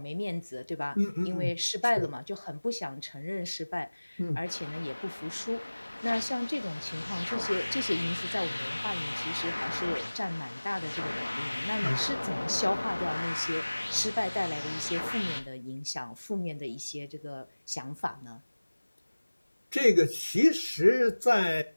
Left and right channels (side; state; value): both; inverted; correlation -1.00